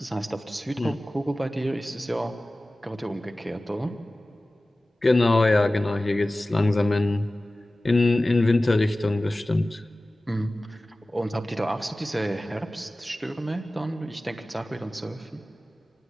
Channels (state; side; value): normal; both; correlation 0.97